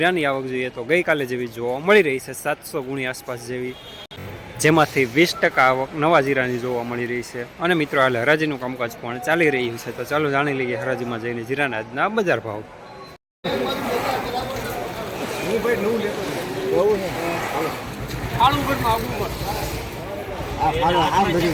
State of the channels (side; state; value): both; identical; correlation 1.00